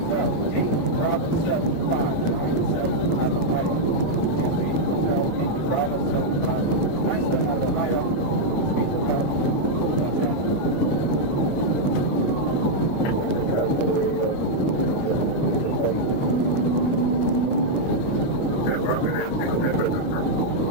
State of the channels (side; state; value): right; late; 9.9 ms